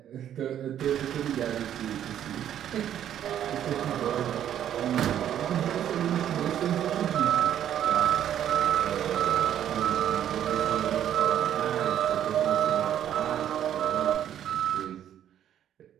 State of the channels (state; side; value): quieter; left; 10.5 dB